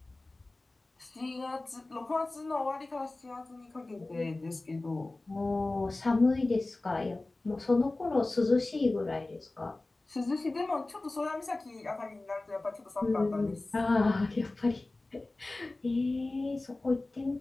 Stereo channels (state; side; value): quieter; right; 3.0 dB